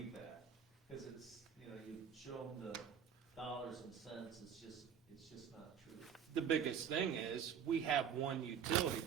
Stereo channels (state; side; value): quieter; left; 7.9 dB